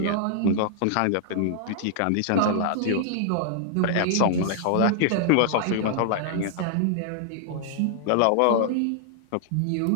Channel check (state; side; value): different; both; correlation -0.01